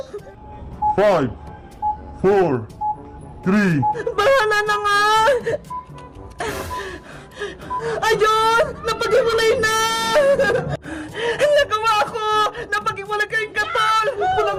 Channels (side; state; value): both; identical; correlation 1.00